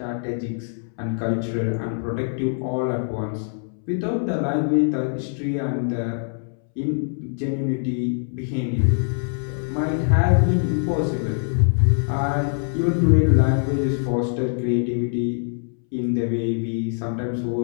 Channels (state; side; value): silent; right; 63 dB below the other